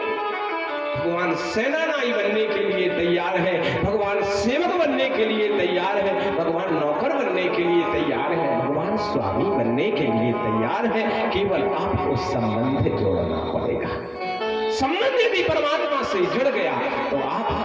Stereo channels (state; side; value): identical; both; correlation 1.00